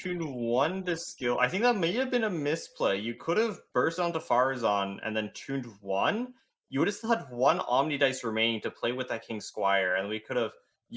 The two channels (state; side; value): identical; both; correlation 1.00